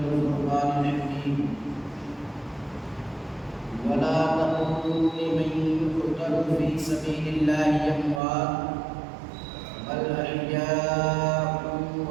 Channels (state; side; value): drops out; left; at 8.2 s